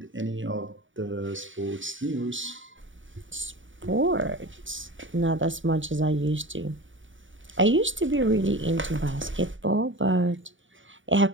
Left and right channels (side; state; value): left; late; 0.56 ms